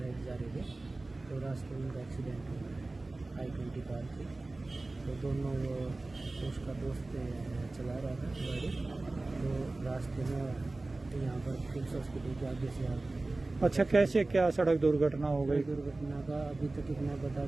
जा रहे थे, तो रास्ते में उनका एक्सीडेंट हुआ I-20 कार थी। तो दोनों उसका दोस्त चला रहा था गाड़ी, तो रास्ते में यहाँ पर किम्स हॉस्पिटल के आगे से आ गए। अच्छा, कैसे क्या सड़क दुर्घटना हो गई? दुर्घटना का अभी तक इतना पता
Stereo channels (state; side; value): quieter; left; 3.1 dB